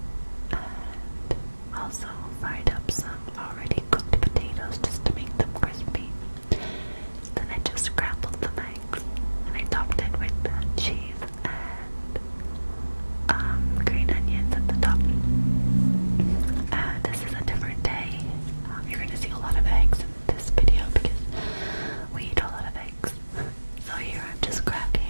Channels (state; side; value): inverted; both; correlation -1.00